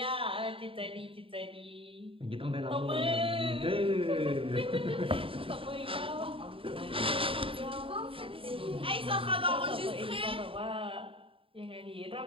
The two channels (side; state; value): left; late; 0.26 ms